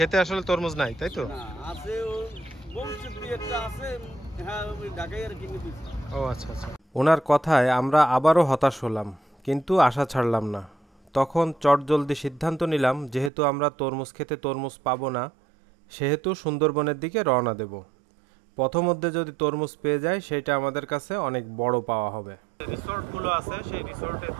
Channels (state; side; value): drops out; left; at 13.3 s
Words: আসলে তরমুজ নাই, তাই তো? ও আচ্ছা আচ্ছা। ওনার কথায় আমরা আবারও হতাশ হলাম, কিন্তু আশা ছাড়লাম না। তখন চটজলদি সিদ্ধান্ত নিলাম, যেহেতু আমরা তরমুজ খেতে তরমুজ পাবো না, সেহেতু সুন্দরবনের দিকে রওনা দেব। পথমধ্যে যদি তরমুজ পেয়ে যায় সেটা আমাদের কাছে অনেক বড় পাওয়া হবে। রিসোর্টগুলো আছে, সেই রিসোর্টের